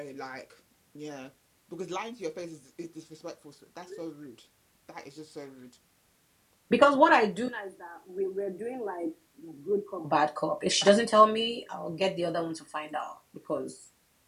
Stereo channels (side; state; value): both; identical; correlation 1.00